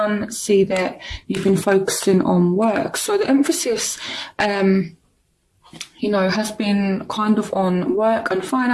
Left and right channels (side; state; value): both; identical; correlation 1.00